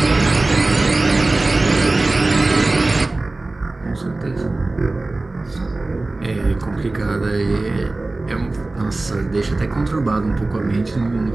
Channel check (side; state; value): left; quieter; 3.1 dB